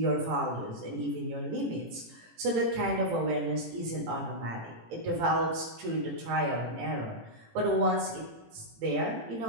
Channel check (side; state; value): left; late; 18 ms